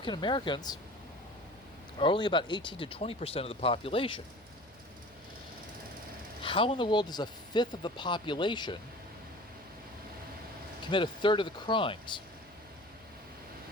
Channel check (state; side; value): noise; right; hum, 28 dB below the sound